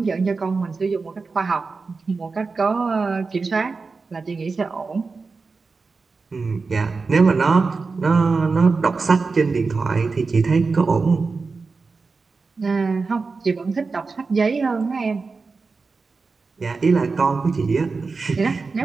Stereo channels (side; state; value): left; quieter; 4.3 dB